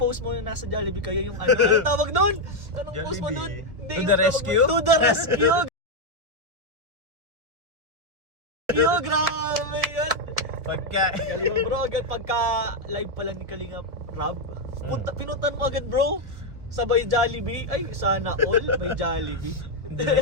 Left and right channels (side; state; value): left; late; 1.2 ms